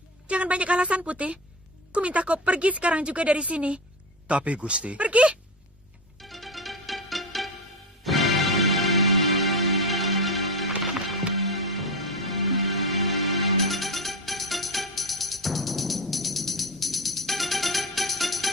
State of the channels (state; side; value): normal; both; correlation 0.19